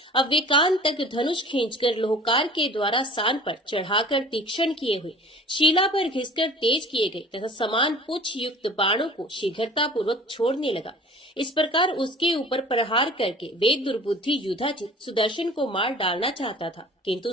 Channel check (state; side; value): normal; both; correlation 0.45